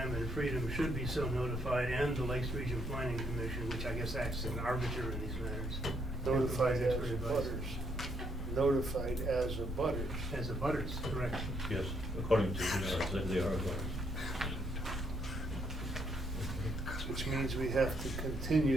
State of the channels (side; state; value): both; normal; correlation 0.72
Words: and Freedom should be so notified, and the Lakes Region Planning Commission, which I guess acts as an arbiter in these matters. Notified as Expert a advice. butters. Notified as a butters. As a butters, correct. Yes, according to they are. Which means we have to